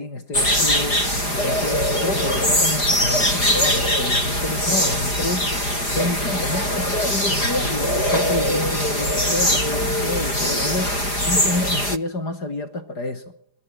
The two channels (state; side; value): late; right; 4.9 ms